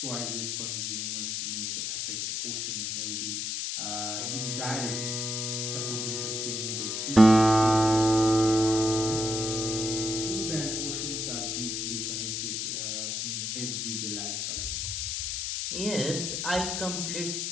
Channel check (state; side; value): noise; left; hiss, 2 dB below the sound